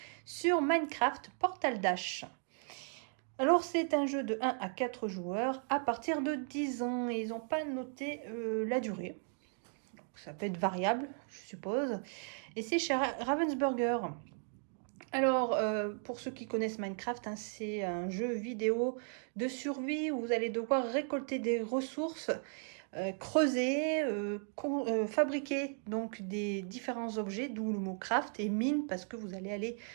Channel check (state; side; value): silent; left; 54 dB below the other